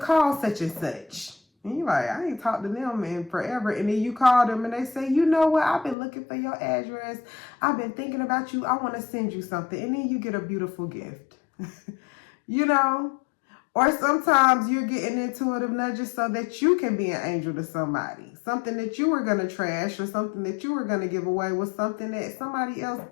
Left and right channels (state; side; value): drops out; right; at 6.0 s